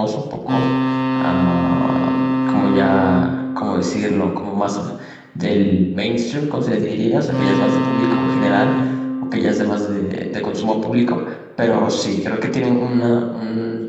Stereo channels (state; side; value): identical; both; correlation 1.00